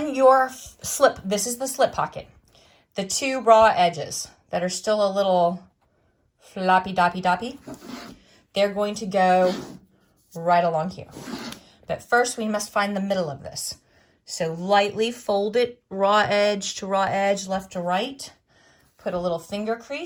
your slip, this is the slip pocket. The 2 raw edges, that are still a little floppy doppy, they're going to go right along here. But first we must find the middle of this. So lightly fold it raw edge to raw edge, left to right. Put a little finger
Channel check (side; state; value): both; identical; correlation 1.00